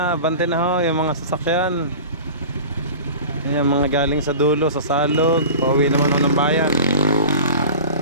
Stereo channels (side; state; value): both; inverted; correlation -0.36